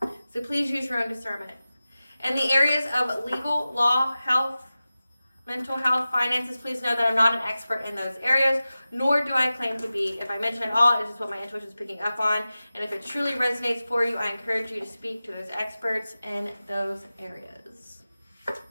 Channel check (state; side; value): inverted; both; correlation -0.95